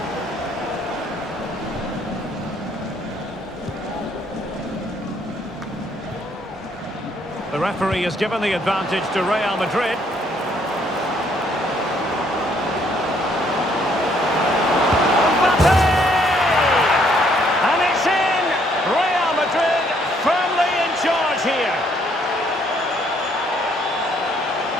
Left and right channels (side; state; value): both; normal; correlation 0.67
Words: The referee has given the advantage to Real Madrid. Mbappe! And it's in! Real Madrid firmly in charge here.